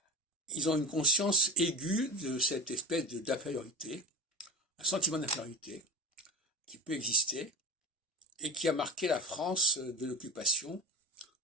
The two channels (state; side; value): normal; both; correlation 0.27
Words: Ils ont une conscience aiguë de cette espèce d'infériorité, un sentiment d'infériorité qui peut exister et qui a marqué la France de l'occupation,